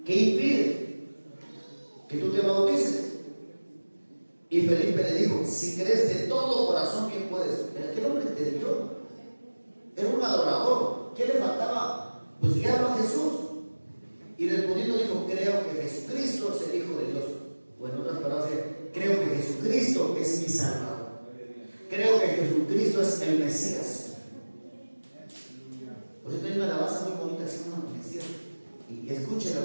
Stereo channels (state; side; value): inverted; both; correlation -1.00